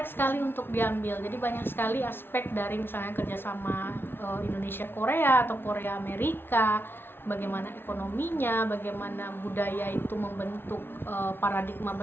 sekali untuk diambil. Jadi banyak sekali aspek dari misalnya kerjasama Indonesia Korea atau Korea Amerika, bagaimana ekonominya, bagaimana budaya itu membentuk paradigma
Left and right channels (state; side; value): late; right; 0.11 ms